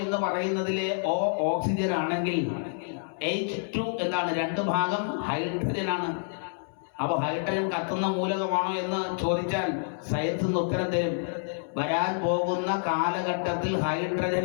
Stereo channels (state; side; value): silent; right; 59 dB below the other